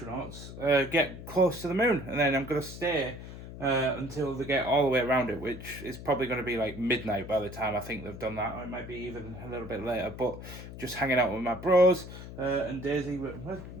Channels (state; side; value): noise; left; hum, 12 dB below the sound